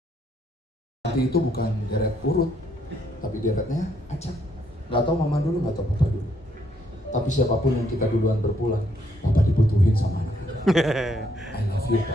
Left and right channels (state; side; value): normal; both; correlation 0.72